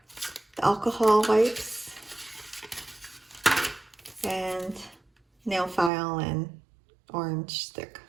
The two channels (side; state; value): left; drops out; at 5.9 s